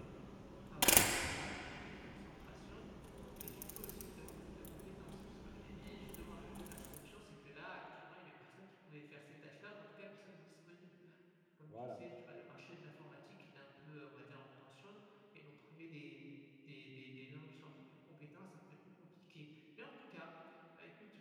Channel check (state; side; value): identical; both; correlation 1.00